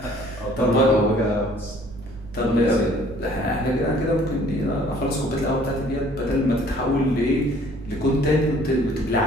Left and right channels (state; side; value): noise; right; rumble, 17 dB below the sound